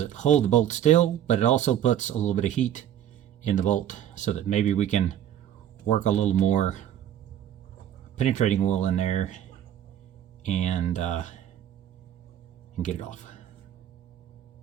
hold the bolt still, but it also puts a little bit of heat in the bolt so that maybe we can work a little more penetrating oil in there and get it off.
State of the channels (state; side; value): quieter; left; 10.7 dB